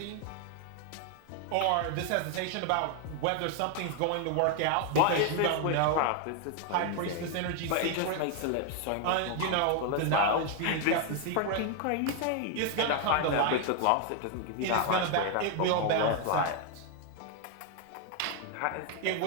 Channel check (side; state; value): both; different; correlation 0.01